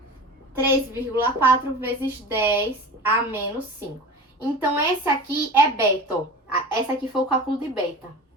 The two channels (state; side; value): normal; both; correlation 0.34